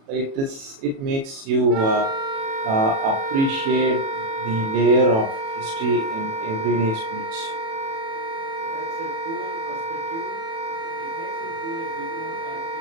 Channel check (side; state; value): left; late; 36 ms